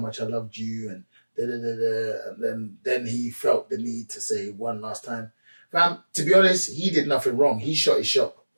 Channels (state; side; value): inverted; both; correlation -1.00